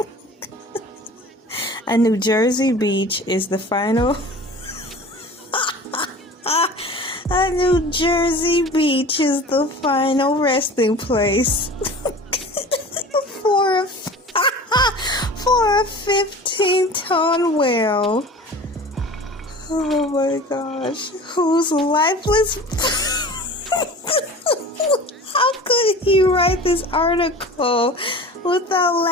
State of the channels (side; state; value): both; normal; correlation 0.39